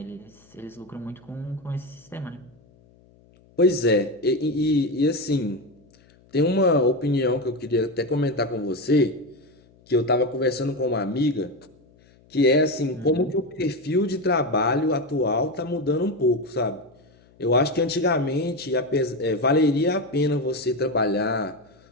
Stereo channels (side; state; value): left; noise; hum, 29 dB below the sound